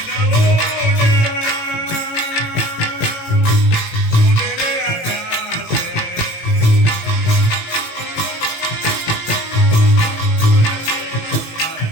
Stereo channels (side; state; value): right; late; 18 ms